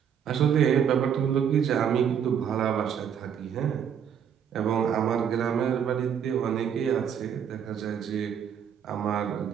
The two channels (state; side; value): quieter; left; 8.2 dB